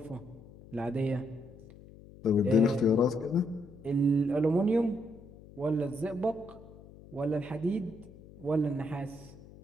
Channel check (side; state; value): left; noise; hum, 20 dB below the sound